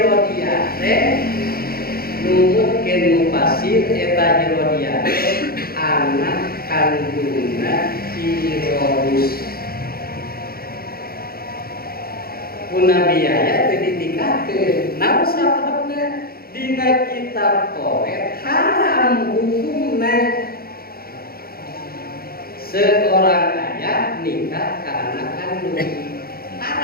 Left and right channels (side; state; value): right; late; 0.44 ms